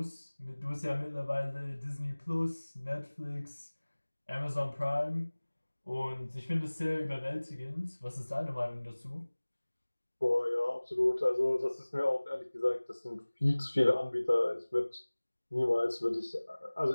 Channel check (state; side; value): inverted; both; correlation -1.00